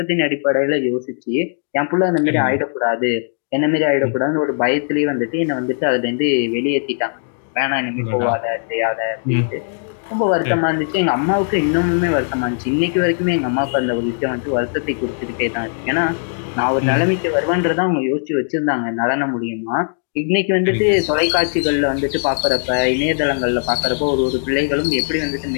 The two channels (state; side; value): silent; right; digital silence